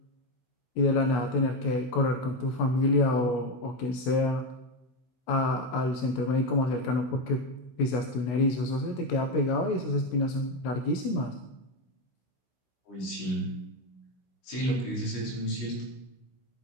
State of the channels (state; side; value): late; right; 16 ms